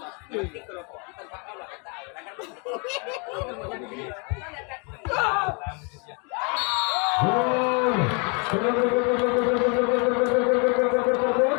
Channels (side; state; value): right; quieter; 34.5 dB